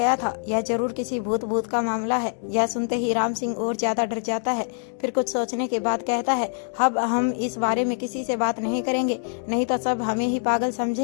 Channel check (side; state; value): right; silent; 57 dB below the other